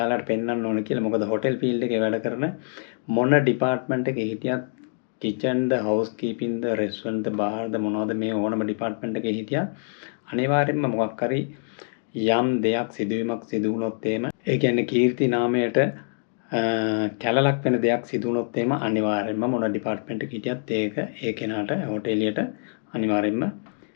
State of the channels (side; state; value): right; silent; digital silence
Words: පෙන්වන්න ඕන කියලා. මොකද හොටෙල් ෆීල්ඩ් එකේ වැඩ කරන මොන ඩිපාර්ට්මන්ට් එකේ හිටියත් kitchen ද house keeping ද restaurant ද bar ද මොනවද මේ ඕනම ඩිපාර්ට්මන්ට් එකේ හිටියත් අනිවාර්යෙන්ම මොකක් හරි යම් දෙයක් සිදුවීමක් සිදු වුණොත් එහෙම ඒ කියන්නේ කීර්ති නාමයට කැලලක් වෙන දෙයක් සිදු වුණොත් එහෙම අනිවාර්යෙන්ම මොන ඩිපාර්ට්මන්ට් එකක හිටියත් ඒක ඒ කෙනාට හොටෙලියට අනිවාර්යෙන්ම